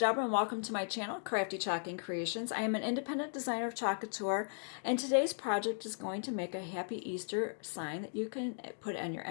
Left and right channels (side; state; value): right; silent; digital silence